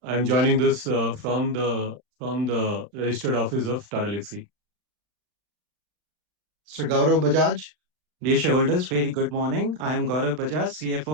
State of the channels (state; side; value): late; left; 39 ms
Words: I'm joining this from the registered office of Tata Elxsi. Mr. Gaurav Bajaj. Dear shareholders, very good morning. I am Gaurav Bajaj,